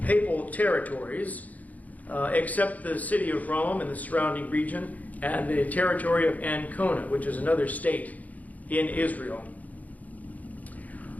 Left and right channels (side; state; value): right; late; 0.076 ms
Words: papal territories except the city of Rome and the surrounding region and the territory of Ancona, which is another state in Israel.